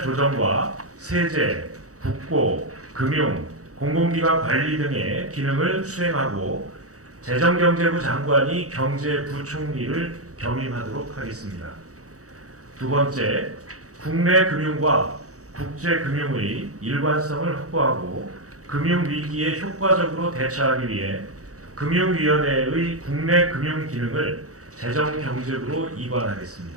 조정과 세제, 국고, 금융, 공공기관 관리 등의 기능을 수행하고 재정경제부 장관이 경제부총리를 겸임하도록 하겠습니다. 두 번째, 국내 금융과 국제 금융의 일관성을 확보하고 금융위기에 효과적으로 대처하기 위해 금융위원회의 국내 금융 기능을 재정경제부로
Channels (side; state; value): left; late; 0.66 ms